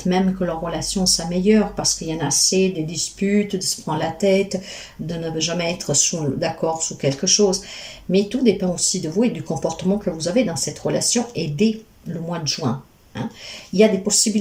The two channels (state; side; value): identical; both; correlation 1.00